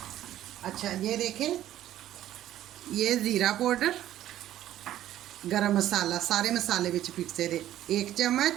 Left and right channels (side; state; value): left; quieter; 12.7 dB